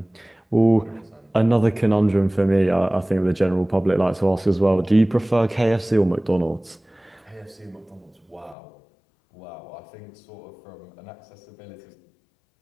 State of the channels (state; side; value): drops out; right; at 8.6 s